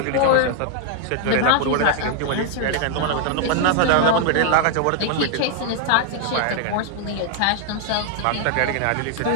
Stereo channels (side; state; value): both; different; correlation 0.00